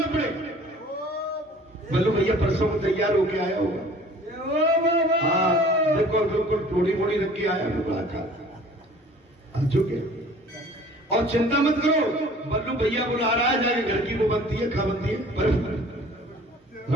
पड़े। बल्लू भैया परसों को तैयार होके आया होगा। हाँ, देखो बिल्कुल टोड़ी मोड़ी रख के आया, बड़ा खा चुके। और चिंता मत करो, बल्लू भैया बुला रहा है, जाके घर की वो बनती है, खा बनती है, बर्फ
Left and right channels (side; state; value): both; normal; correlation 0.49